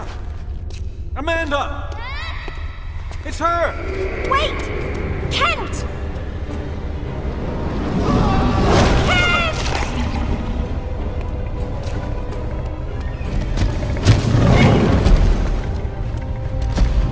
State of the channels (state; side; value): identical; both; correlation 1.00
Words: Amanda! It's her! Wait! Kent! Kent!